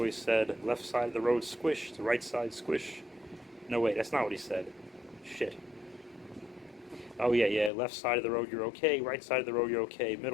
said, left side of the road squish, the right side squish. No, wait, that's not what he said. Shit. Oh, yeah, left side of the road you're okay, right side of the road you're okay,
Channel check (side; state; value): right; drops out; at 7.7 s